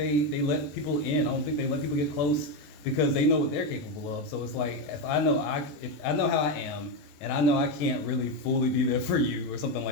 let people in. I don't think they let people get close because they know what they're capable of. So it's like, if I know how I am, and I know I can't really fully be there for you or something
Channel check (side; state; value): right; late; 21 ms